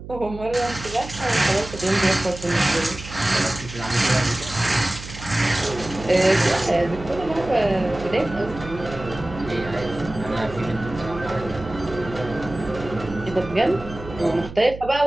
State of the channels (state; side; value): noise; right; hum, 13 dB below the sound